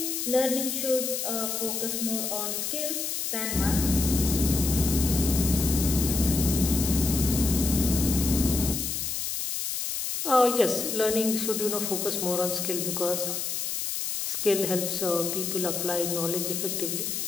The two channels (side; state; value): left; noise; hiss, 2 dB below the sound